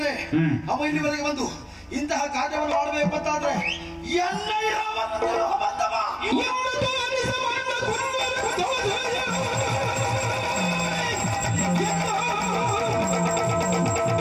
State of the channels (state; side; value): identical; both; correlation 1.00